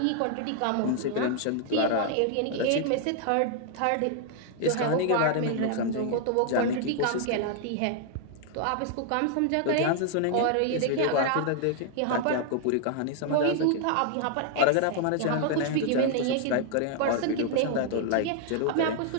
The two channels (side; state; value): both; different; correlation 0.00